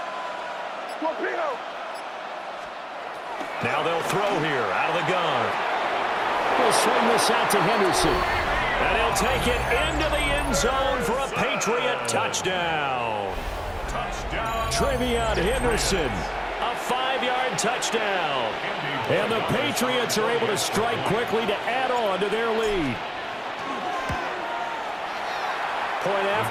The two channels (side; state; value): both; identical; correlation 1.00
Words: Now they'll throw here out of the gun. We'll swing this out to Henderson. And he'll take it into the end zone for a Patriot touchdown. Trevion Henderson. A 5-yard touchdown. And the Patriots are able to strike quickly to add on to their lead. Point